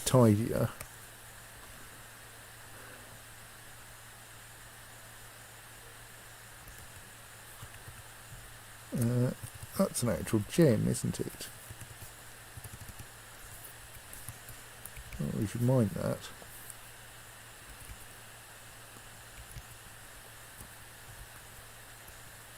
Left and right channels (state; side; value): identical; both; correlation 1.00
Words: tidier. That's an actual gem, isn't it? Oh, we should mine that.